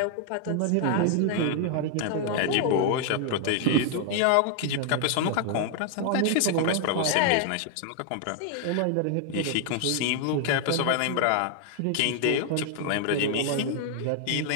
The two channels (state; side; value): different; both; correlation 0.00